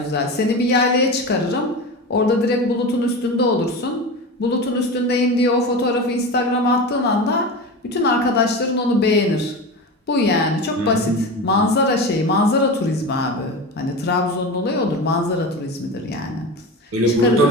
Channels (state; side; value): normal; both; correlation 0.26